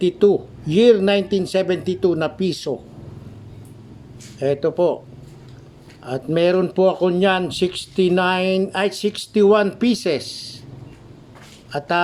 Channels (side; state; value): both; identical; correlation 1.00